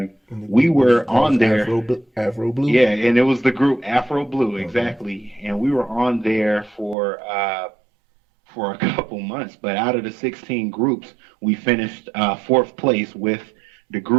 we were on there. Afro Blue. Yeah, and it was the group Afro Blue, exactly. And we were on there for a couple months. But out of the 16 groups, we finished 4th place with the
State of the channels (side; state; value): left; drops out; at 7.0 s